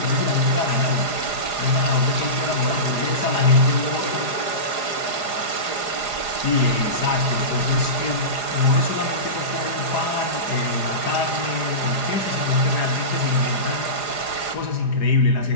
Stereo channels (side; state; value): right; late; 4.9 ms